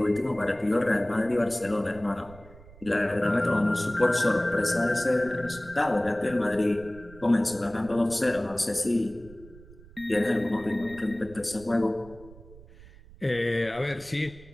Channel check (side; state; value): right; noise; rumble, 21 dB below the sound